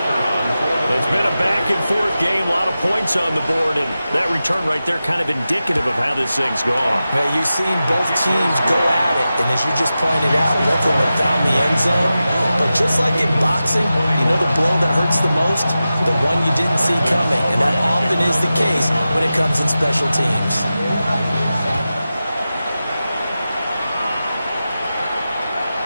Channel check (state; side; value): inverted; both; correlation -0.93